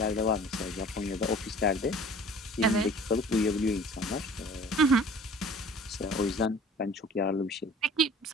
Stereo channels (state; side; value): normal; both; correlation 0.46